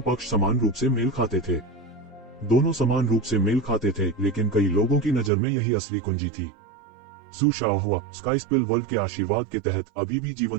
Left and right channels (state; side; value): drops out; left; at 5.3 s